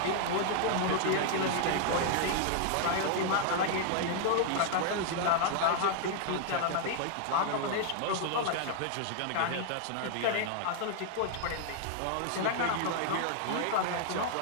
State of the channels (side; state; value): both; different; correlation -0.01